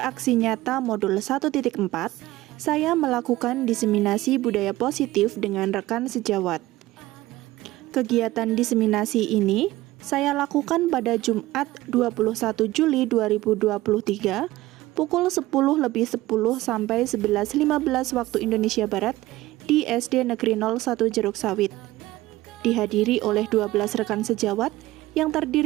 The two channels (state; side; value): quieter; left; 17.4 dB